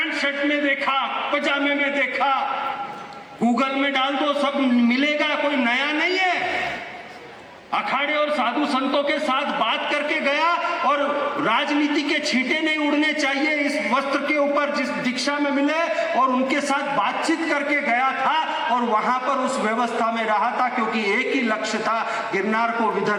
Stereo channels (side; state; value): both; identical; correlation 1.00